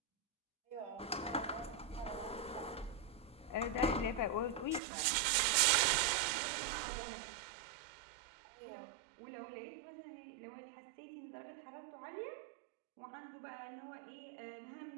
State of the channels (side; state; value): left; drops out; at 4.8 s